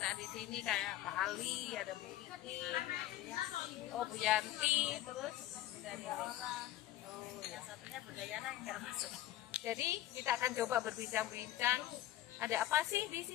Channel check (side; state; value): right; quieter; 14.0 dB